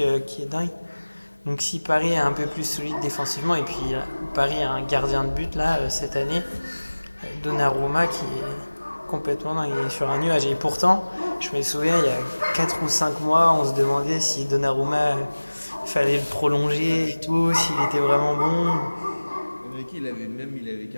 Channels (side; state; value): both; inverted; correlation -1.00